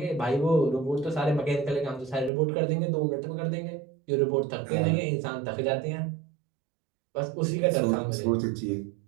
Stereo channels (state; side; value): drops out; left; at 2.3 s